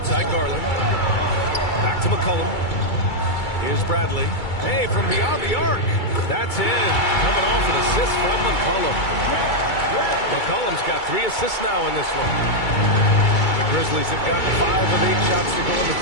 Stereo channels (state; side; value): late; right; 2.3 ms